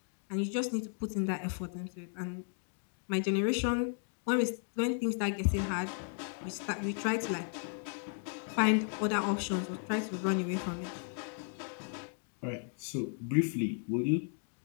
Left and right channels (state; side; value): silent; right; 55 dB below the other